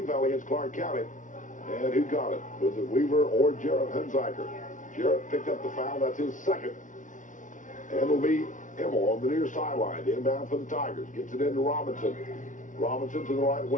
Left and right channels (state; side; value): late; right; 0.37 ms